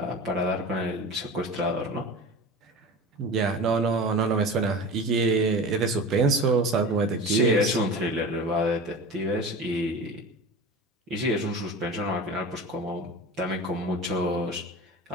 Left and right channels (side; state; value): both; normal; correlation 0.33